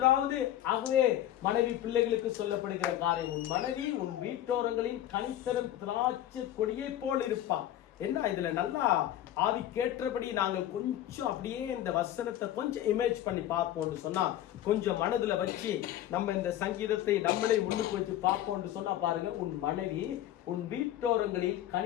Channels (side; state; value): right; quieter; 12.5 dB